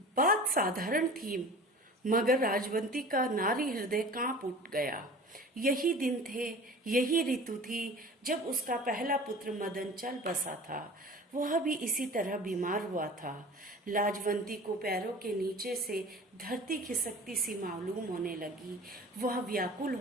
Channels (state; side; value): normal; both; correlation 0.40